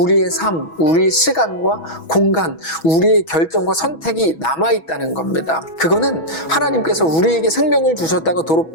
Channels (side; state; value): right; late; 6.2 ms